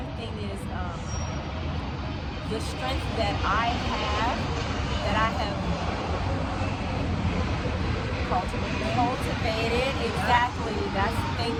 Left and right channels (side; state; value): both; identical; correlation 1.00